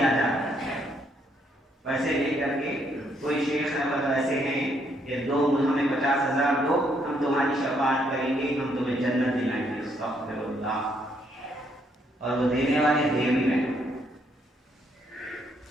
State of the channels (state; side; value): normal; both; correlation 0.72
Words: جاتا ہے، پیسے لے کر کے کوئی شیخ احمد ایسے ہیں کہ دو ہمیں 50,000 دو، ہم تمہاری شفاعت کریں گے، ہم تمہیں جنت دلائیں گے۔ استغفر اللہ۔ اور وہ دینے والے دے بھی رہے،